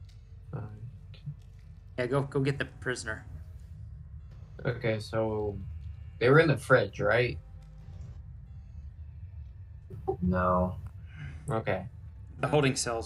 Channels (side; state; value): both; identical; correlation 1.00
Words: Yeah, go get the prisoner. Okay, so they were in the fridge, right? No. Okay. The holding